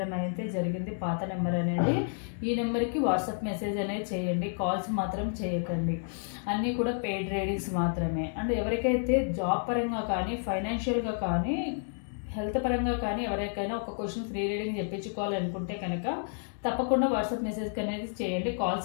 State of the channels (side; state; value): right; silent; digital silence